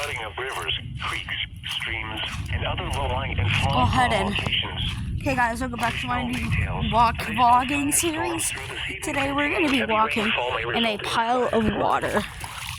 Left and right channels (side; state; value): both; identical; correlation 1.00